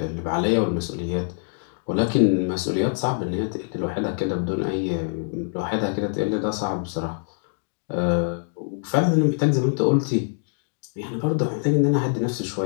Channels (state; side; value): silent; right; 62 dB below the other